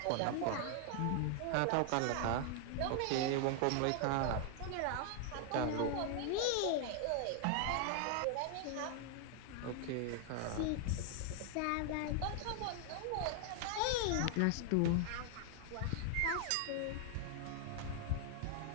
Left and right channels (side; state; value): both; different; correlation 0.00